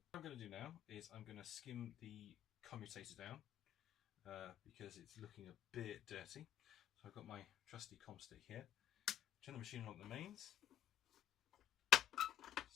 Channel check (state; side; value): quieter; right; 11.4 dB